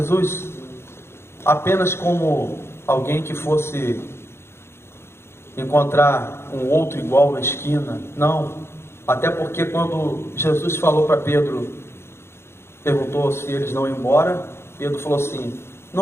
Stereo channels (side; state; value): right; late; 0.12 ms